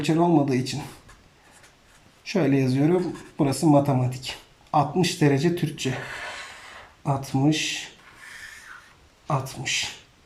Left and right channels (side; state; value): both; identical; correlation 1.00